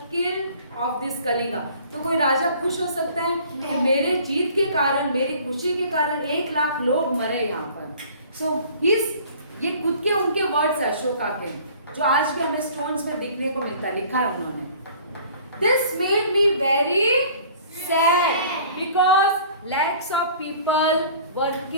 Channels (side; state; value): both; inverted; correlation -0.50